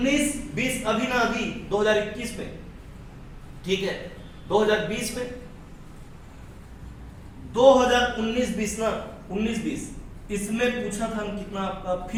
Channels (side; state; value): both; identical; correlation 1.00